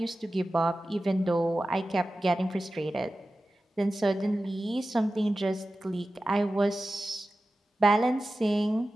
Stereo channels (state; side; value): normal; both; correlation 0.94